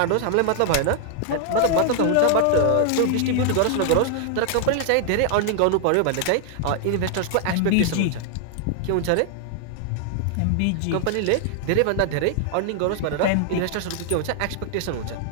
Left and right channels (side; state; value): both; different; correlation 0.00